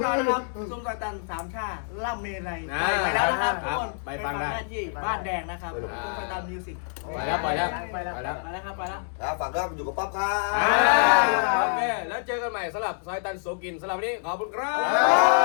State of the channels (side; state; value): right; silent; digital silence